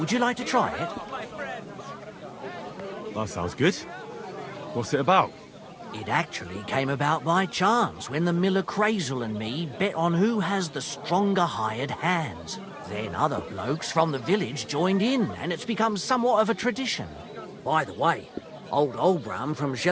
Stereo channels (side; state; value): both; identical; correlation 1.00